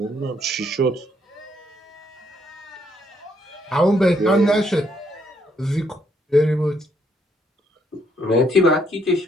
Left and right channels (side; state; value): both; normal; correlation 0.71